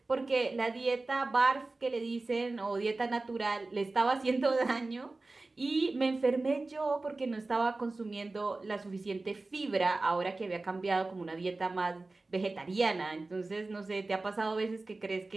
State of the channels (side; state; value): left; quieter; 3.3 dB